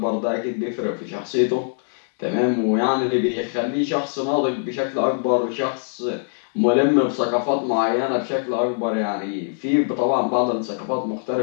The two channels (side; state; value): right; silent; digital silence